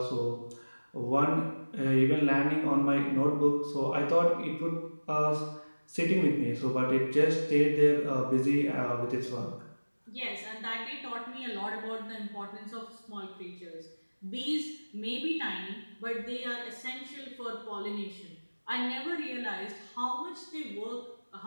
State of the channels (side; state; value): both; inverted; correlation -1.00